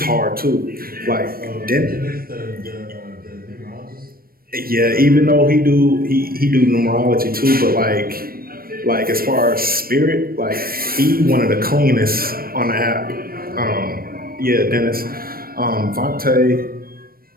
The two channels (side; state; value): left; late; 0.43 ms